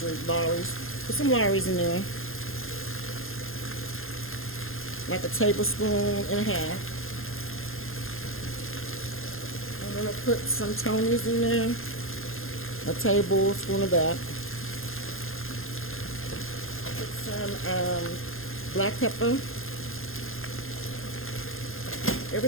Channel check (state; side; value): late; right; 0.60 ms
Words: Lawry's. Put some Lawry's in there. Like a tablespoon and a half. I'm gonna put some Tony's in there. A tablespoon of that. Put some black pepper.